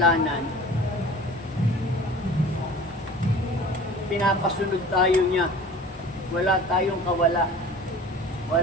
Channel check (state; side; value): normal; both; correlation 0.42